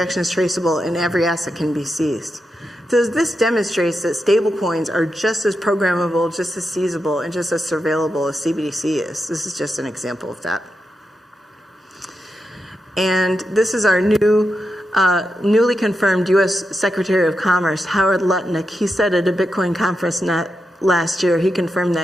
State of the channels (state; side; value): normal; both; correlation 0.87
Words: is traceable, and every asset can be seized. So this demonstrates that stablecoins are just as programmable, just as seizable, and just as surveillable as CBDC is. This is just an example of that. And this is our newly confirmed U.S. Secretary of Commerce, Howard Lutnick. He said at a Bitcoin conference last year, he confirmed